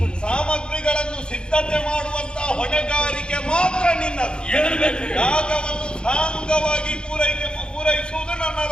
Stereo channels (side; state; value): right; late; 0.051 ms